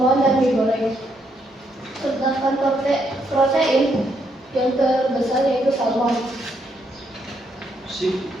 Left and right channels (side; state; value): both; normal; correlation 0.75